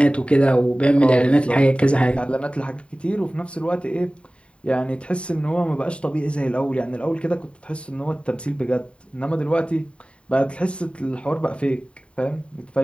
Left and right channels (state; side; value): late; right; 0.059 ms